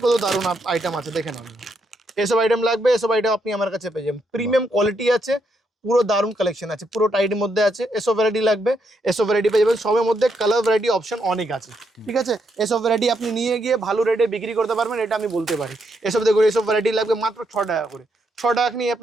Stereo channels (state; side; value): normal; both; correlation 0.78